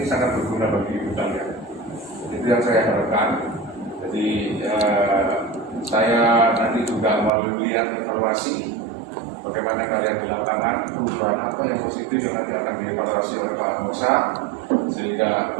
sangat berguna bagi hidup kalian. Itu yang saya harapkan. Jadi saya nanti juga mau lihat evaluasi bagaimana kalian di lapangan, perubahan apa yang positif yang nanti akan dievaluasi oleh Pak Mosa, sehingga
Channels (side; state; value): left; drops out; at 7.3 s